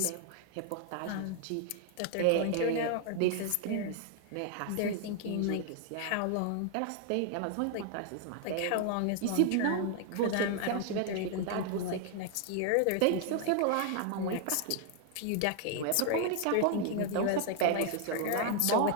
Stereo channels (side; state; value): both; different; correlation 0.00